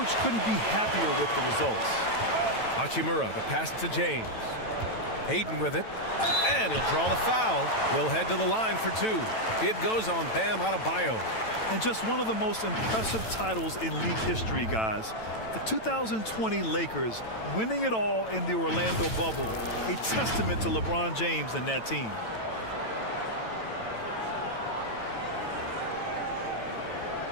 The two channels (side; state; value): right; late; 9.0 ms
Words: couldn't be happier with the results. Hachimura, the pass to James. Ayton with it. And he'll draw the foul. He'll head to the line for 2. It goes on Bam Adebayo. And just one of the most impressive titles in league history, guys. The 2020 Lakers winning it all in the Orlando bubble. A testament to LeBron James and that team.